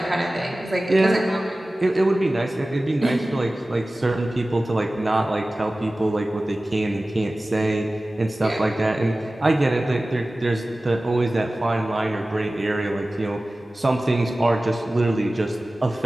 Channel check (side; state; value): both; normal; correlation 0.97